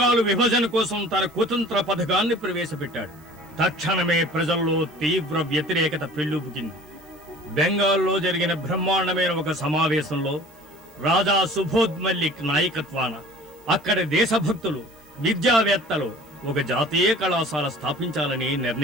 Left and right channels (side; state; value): right; noise; hiss, 30 dB below the sound